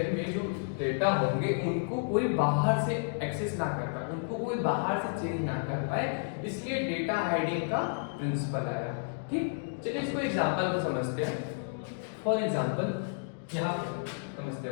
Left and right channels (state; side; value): silent; right; digital silence